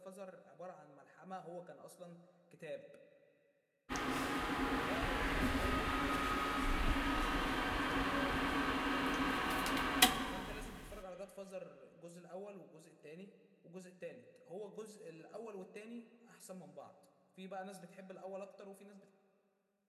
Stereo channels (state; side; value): identical; both; correlation 1.00